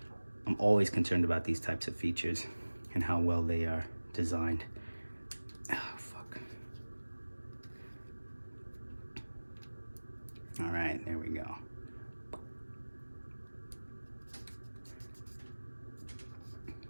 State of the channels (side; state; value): both; inverted; correlation -1.00